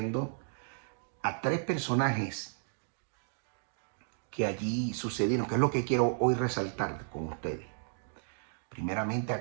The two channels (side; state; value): left; silent; digital silence